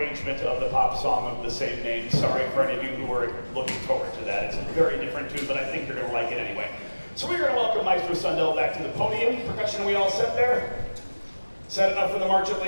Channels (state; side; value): inverted; both; correlation -1.00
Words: of the pop song of the same name. Sorry for any of you who are looking forward to that. It's a very different tune, but I think you're going to like it anyway. So we're going to welcome Maestro Sundell back to the podium. Percussion, we all set there? Set enough for the march at